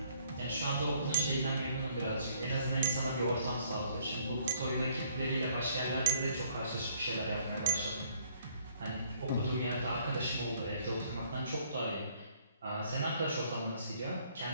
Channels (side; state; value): both; inverted; correlation -0.62